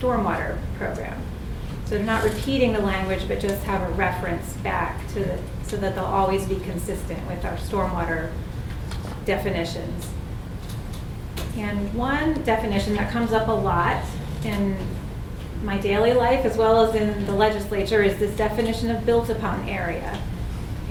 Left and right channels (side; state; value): both; identical; correlation 1.00